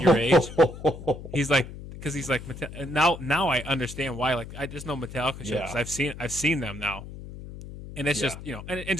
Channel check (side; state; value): left; noise; hum, 12 dB below the sound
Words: age. He's like, because he's like, now I understand why. Like, I just know Metallica shows. Yeah. I've seen them now, and it's just and